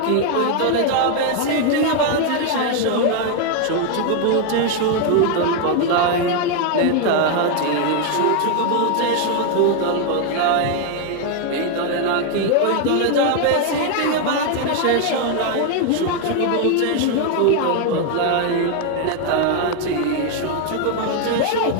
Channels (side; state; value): both; different; correlation 0.00